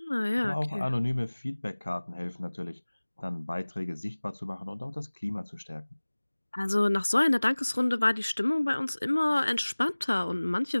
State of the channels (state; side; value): inverted; both; correlation -1.00